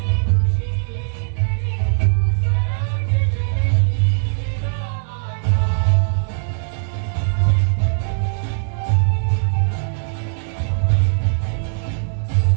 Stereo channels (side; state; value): left; silent; digital silence